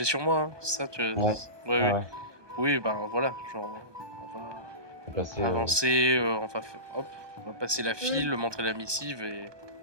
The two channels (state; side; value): late; left; 1.2 ms